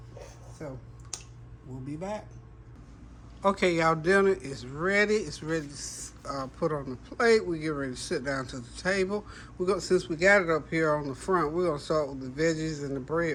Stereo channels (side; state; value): both; identical; correlation 1.00